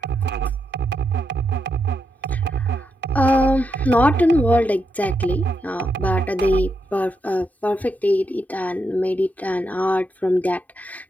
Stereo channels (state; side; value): normal; both; correlation 0.83